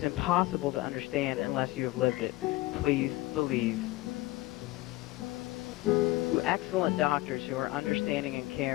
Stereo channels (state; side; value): quieter; right; 19.5 dB